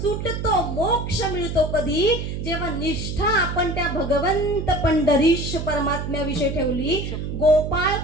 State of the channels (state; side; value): noise; right; hum, 5 dB below the sound